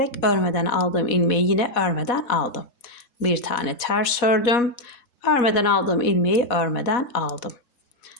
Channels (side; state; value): right; late; 4.1 ms